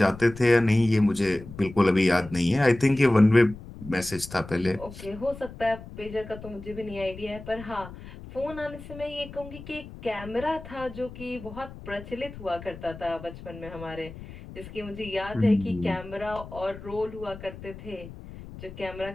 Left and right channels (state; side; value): noise; left; rumble, 14 dB below the sound